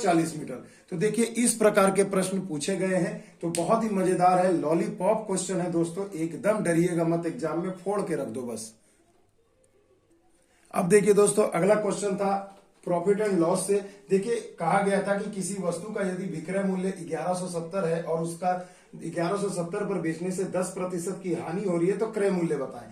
मीटर। तो देखिए इस प्रकार के प्रश्न पूछे गए हैं, तो बहुत ही मजेदार है, लॉलीपॉप क्वेश्चन है दोस्तों, एकदम डरिएगा मत, एग्जाम में फोड़ के रख दो बस। अब देखिए दोस्तों, अगला क्वेश्चन था प्रॉफिट एंड लॉस से। देखिए कहा गया था कि किसी वस्तु का यदि विक्रय मूल्य 1170 है और उसका 1170 पर बेचने से 10% की हानि हो रही है, तो क्रय मूल्य बताएं।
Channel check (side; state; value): both; identical; correlation 1.00